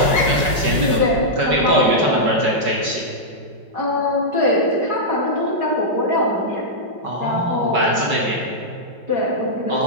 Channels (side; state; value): left; late; 4.7 ms